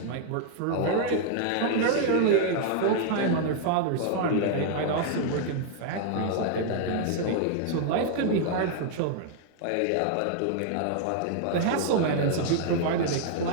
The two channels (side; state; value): both; different; correlation -0.01